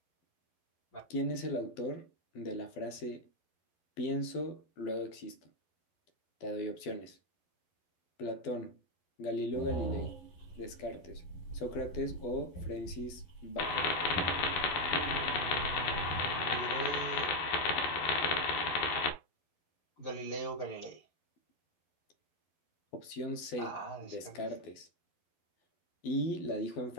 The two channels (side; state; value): right; late; 12 ms